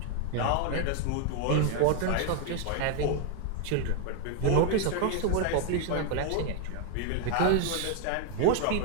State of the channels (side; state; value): both; different; correlation 0.00